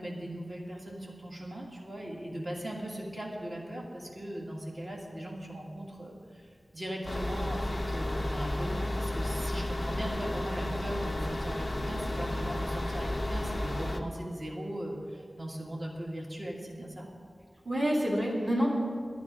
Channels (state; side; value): normal; both; correlation 0.96